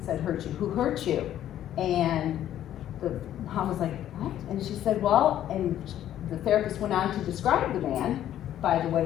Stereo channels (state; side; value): quieter; right; 11.6 dB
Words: said hurt you, who hurt you. And the mom was like, what? And she said, well, and the therapist went on to describe the man by the way